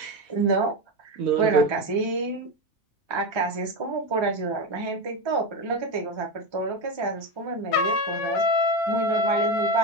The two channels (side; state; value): both; normal; correlation 0.15